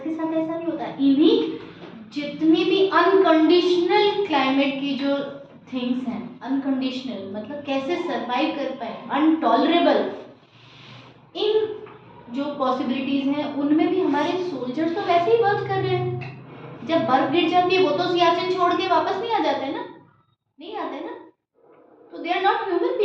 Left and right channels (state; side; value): identical; both; correlation 1.00